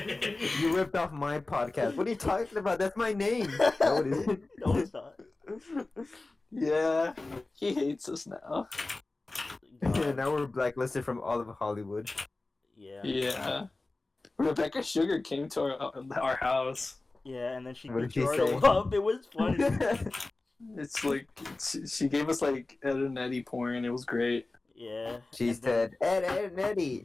You ripped off my podcast. What are you talking about? That's my name. No, it isn't. No, it's not. Yeah. He hates us now. Now we're blacklisted from all of Hollywood. Yeah. Yeah. Rebecca Sugar came to our house. Yeah, and then she What beat did she Gerardo say? up. It was funny. It's like, she gave us like Ed and Eddie porn. It was great. Yeah. She said, Ed and Eddie.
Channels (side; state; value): right; quieter; 3.2 dB